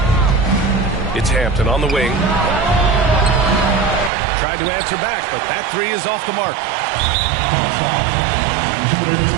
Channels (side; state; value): left; drops out; at 4.1 s